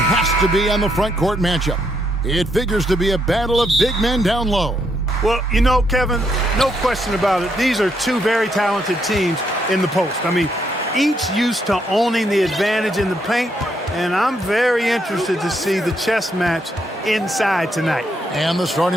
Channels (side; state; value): both; normal; correlation 0.76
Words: to be on the front court matchup. It figures to be a battle of big men down low. Well, you know, Kevin, no question about it. These are two very talented teams in the post. I mean, each used to owning the advantage in the paint, and I'm very interested to see the chess match inside tonight. And the